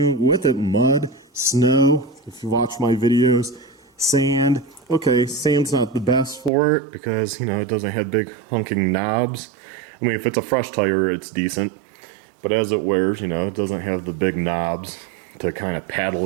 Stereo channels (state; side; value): drops out; left; at 6.5 s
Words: with it. Mud, snow, if you watch my videos, sand. Okay, sand's not the best for it because, you know, it doesn't have big hunking knobs. I mean, if it's a fresh tire, it's decent. But as it wears, you know, it doesn't have the big knobs to kind of